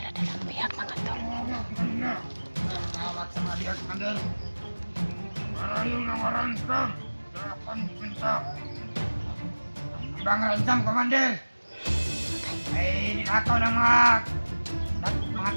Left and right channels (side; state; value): both; inverted; correlation -1.00